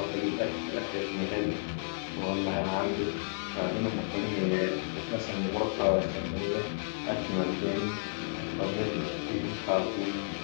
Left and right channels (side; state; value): right; silent; digital silence